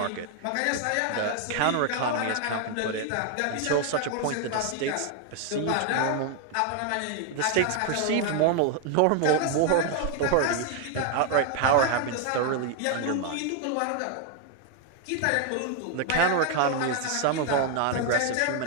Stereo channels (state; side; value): different; both; correlation 0.00